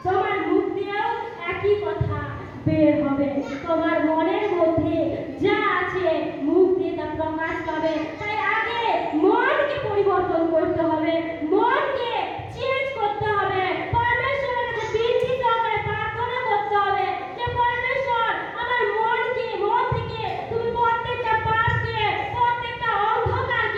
তোমার মুখ দিয়েও একই কথা বের হবে। তোমার মনের মধ্যে যা আছে মুখ দিয়ে তা প্রকাশ পাবে। তাই আগে মনকে পরিবর্তন করতে হবে, মনকে চেঞ্জ করতে হবে। পরমেশ্বরের কাছে বিনতি সহকারে প্রার্থনা করতে হবে যে পরমেশ্বর, আমার মনকে, মন থেকে তুমি প্রত্যেকটা পাপকে, প্রত্যেকটা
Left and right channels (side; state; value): both; identical; correlation 1.00